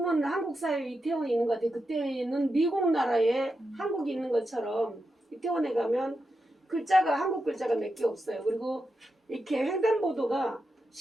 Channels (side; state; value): both; normal; correlation 0.87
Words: 한국 사회에 이태원이 있는 것 같아요. 그때는 미국 나라에 한국이 있는 것처럼 이태원에 가면 글자가 한국 글자가 몇 개 없어요. 그리고 이렇게 횡단보도가